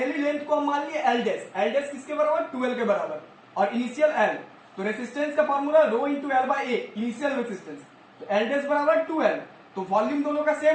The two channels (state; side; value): identical; both; correlation 1.00